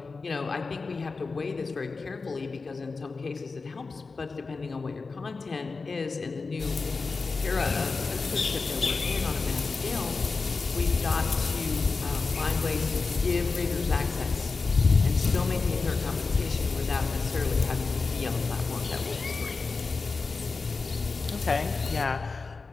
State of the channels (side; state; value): right; quieter; 4.2 dB